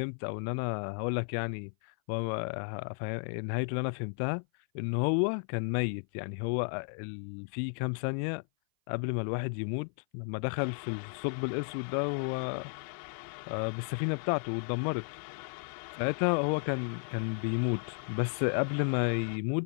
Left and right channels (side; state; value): right; silent; 55 dB below the other